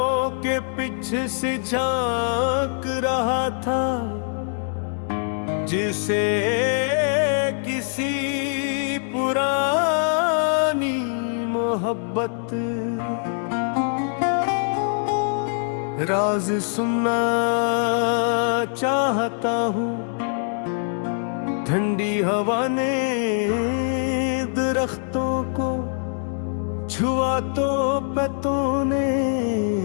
के पीछे से झांक रहा था, जिसे किसी पुरानी मोहब्बत राज सुनना चाहता हूँ। ठंडी हवा ने दरख्तों को छुआ तो पत्तों ने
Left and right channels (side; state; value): right; silent; 63 dB below the other